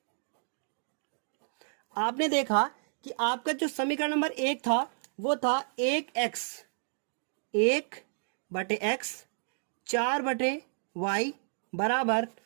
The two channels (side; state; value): left; silent; digital silence